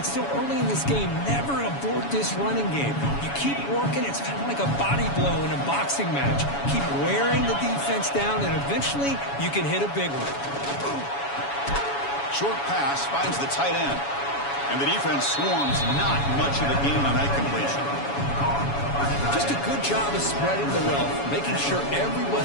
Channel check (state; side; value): late; right; 7.1 ms